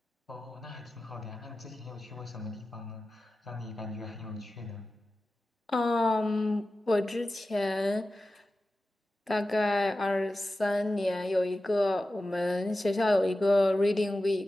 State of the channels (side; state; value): both; normal; correlation 0.94